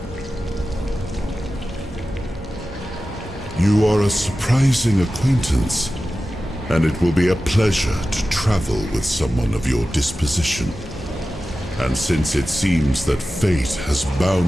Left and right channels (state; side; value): normal; both; correlation 0.94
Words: You are a surprising acquaintance, and it will be a pleasure to travel with someone of your disposition. And since it seems that fate has